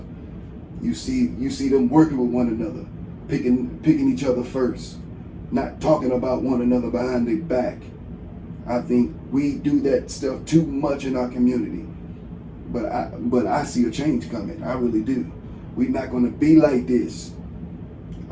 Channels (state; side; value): identical; both; correlation 1.00